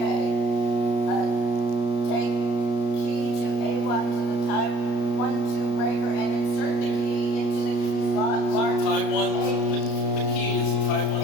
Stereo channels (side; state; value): right; late; 33 ms